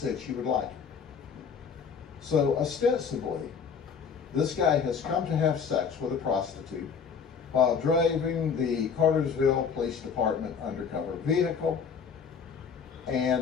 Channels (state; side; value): quieter; right; 6.3 dB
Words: she would like it. So ostensibly, this guy has come to have sex with a prostitute while driving the Cartersville Police Department undercover vehicle,